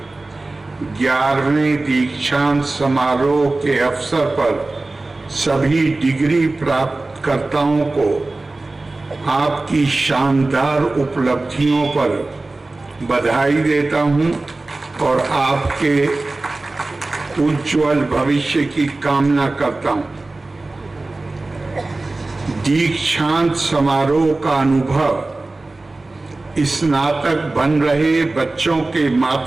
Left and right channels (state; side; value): quieter; left; 3.1 dB